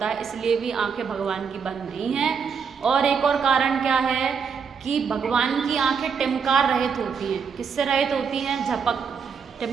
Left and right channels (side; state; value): left; quieter; 6.2 dB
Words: है। इसलिए भी आंखें भगवान की बंद नहीं हैं। और एक और कारण क्या है कि भगवान की आंखें टिमकार रहित होती हैं। किससे रहित होती हैं? झपक।